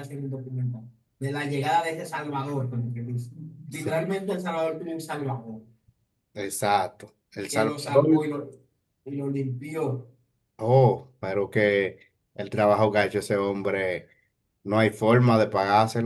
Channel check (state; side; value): identical; both; correlation 1.00